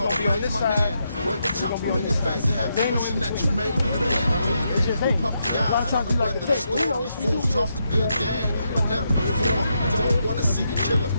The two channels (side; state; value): both; inverted; correlation -0.81